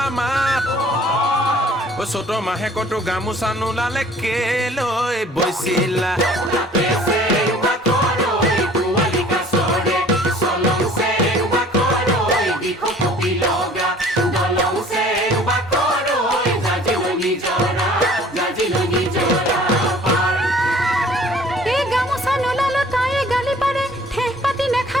মাত ঐ চ'তৰ মাহেকতো গামোচা নোলালে কেলৈ বৈছিলা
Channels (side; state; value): both; normal; correlation 0.52